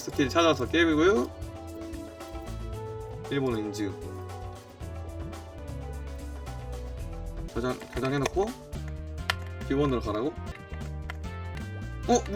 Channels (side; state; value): both; identical; correlation 1.00